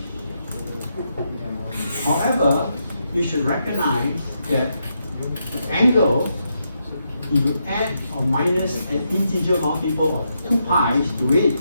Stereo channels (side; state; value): both; inverted; correlation -0.81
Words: However, you should recognize that the angle if you add or minus an integer multiple of 2 pi to it,